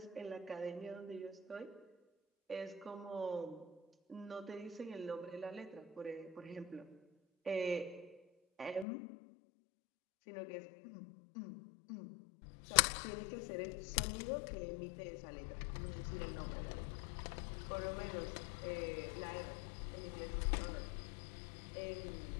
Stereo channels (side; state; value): right; drops out; at 8.8 s